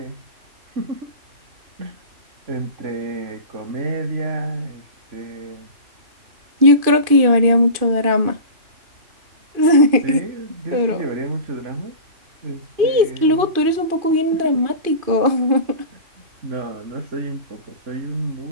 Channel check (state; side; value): late; left; 2.5 ms